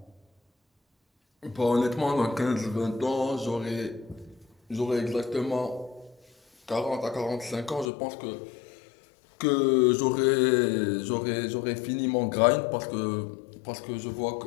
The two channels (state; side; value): drops out; right; at 7.9 s